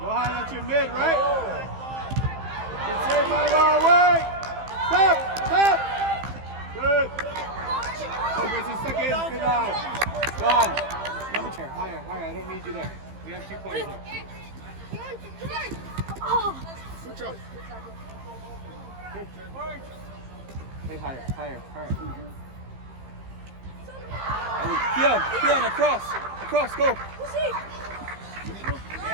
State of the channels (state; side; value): late; left; 15 ms